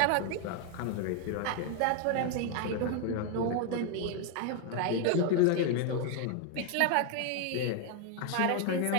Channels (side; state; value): both; different; correlation 0.00